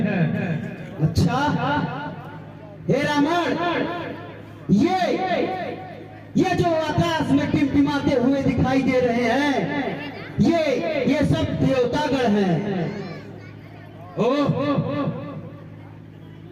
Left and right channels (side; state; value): both; identical; correlation 1.00